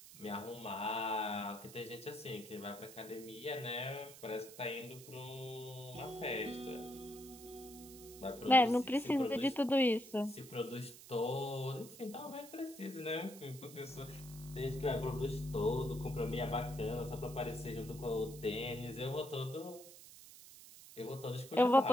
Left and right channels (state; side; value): noise; right; hiss, 17 dB below the sound